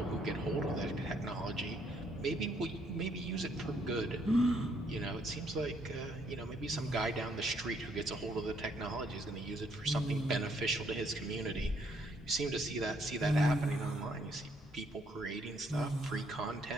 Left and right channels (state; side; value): normal; both; correlation 0.70